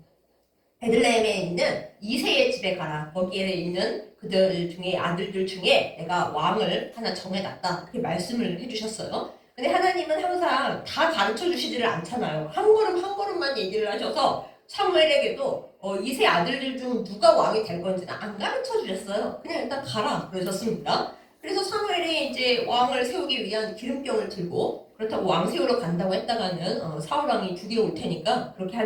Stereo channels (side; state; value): both; identical; correlation 1.00